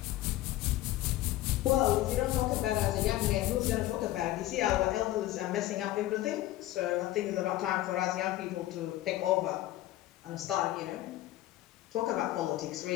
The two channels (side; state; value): right; quieter; 15.5 dB